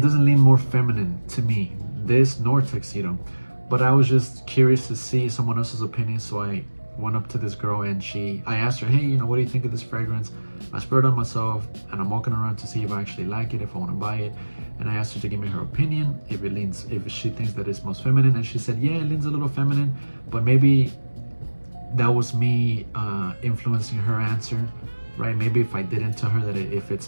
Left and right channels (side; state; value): both; inverted; correlation -1.00